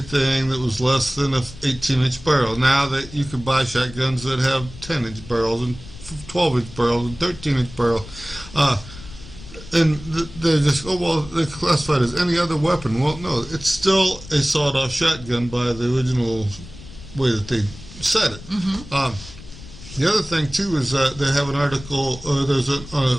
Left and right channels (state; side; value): noise; left; rumble, 16 dB below the sound